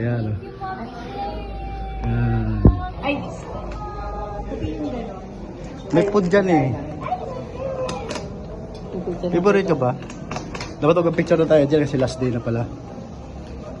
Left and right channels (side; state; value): both; identical; correlation 1.00